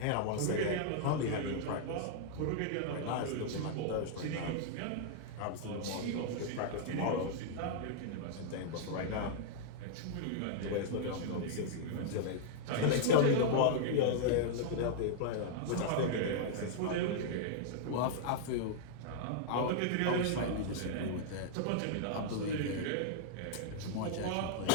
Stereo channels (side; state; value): both; different; correlation -0.01